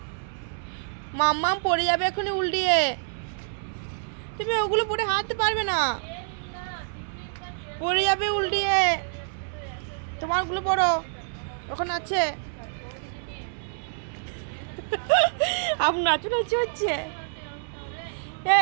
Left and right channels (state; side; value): silent; left; 58 dB below the other